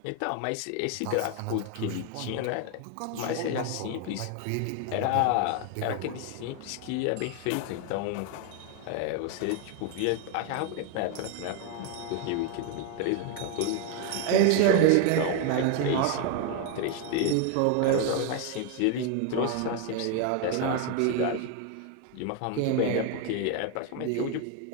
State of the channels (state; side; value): different; both; correlation 0.01